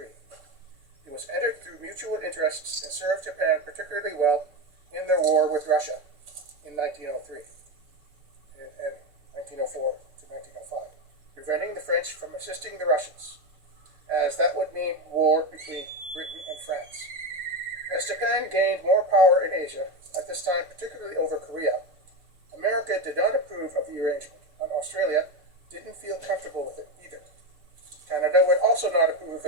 It was entered through mutual interests and served Japan particularly well in their war with Russia in 1903 and 1904 to 1905, preventing the French from assisting the Russians, as that would mean war between Britain and France. As Japan gained more power in Asia, at this time particularly over Korea, America did not approve of the arrangement, and Australia didn't feel comfortable with it either. Canada would also not approve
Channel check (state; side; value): late; left; 6.7 ms